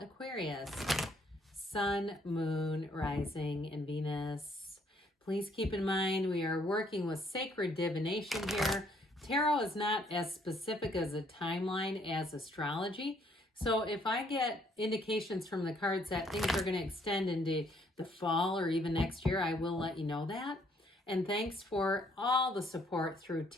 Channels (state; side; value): normal; both; correlation 0.66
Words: Aquarius, Sun, Moon, Rising, and Venus. Please keep in mind we are working with sacred divination here. Tarot is not as specific as a timeline as astrology. So if I get indications from the cards that things are going to extend into the fall or even next year, I will let you know that. And thanks for all the support through